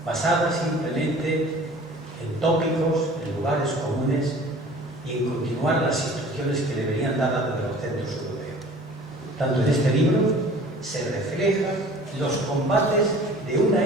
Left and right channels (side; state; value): both; normal; correlation 0.46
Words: basada simplemente en tópicos, en lugares comunes y en continuar las instrucciones que le venían dadas desde los centros europeos. Tanto en este libro se reflejan los combates de una